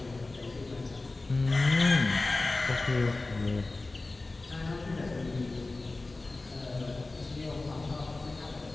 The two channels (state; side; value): quieter; right; 3.3 dB